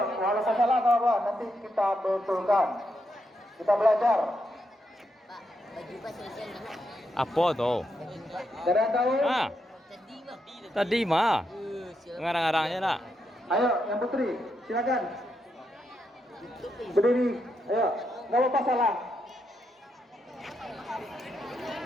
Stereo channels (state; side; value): normal; both; correlation 0.82